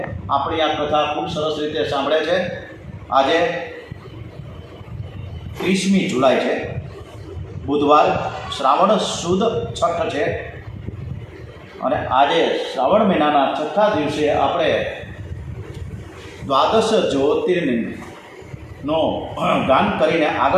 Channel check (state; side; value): identical; both; correlation 1.00